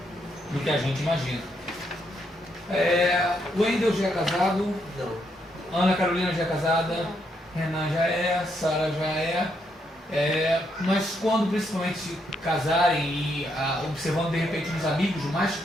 que a gente imagina. O Wendel já é casado? Não. Ana Carolina já é casada? Renan já é, Sara já é. Mas quando principalmente casarem e observando de repente os amigos mais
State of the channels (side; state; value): both; normal; correlation 0.77